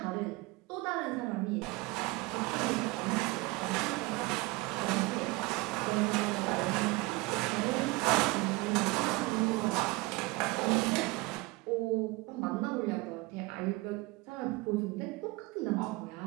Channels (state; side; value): quieter; left; 22.6 dB